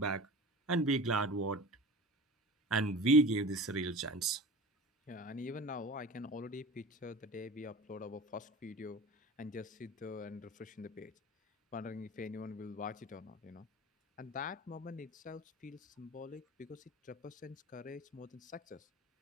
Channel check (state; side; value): normal; both; correlation 0.35